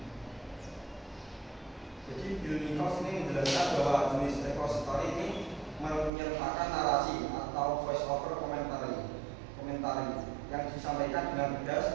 Jadi Bill Nichols ini menjelaskan bahwa jenis repository ini menyertakan narasi atau voice over komentari yang disampaikan dengan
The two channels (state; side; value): drops out; left; at 6.1 s